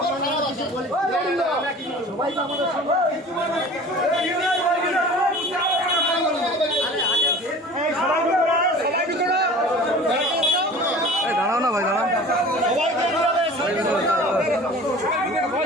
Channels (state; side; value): normal; both; correlation 0.42